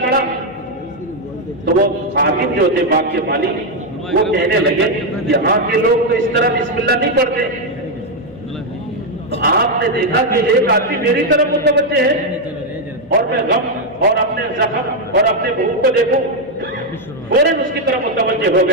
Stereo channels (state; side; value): noise; left; hum, 24 dB below the sound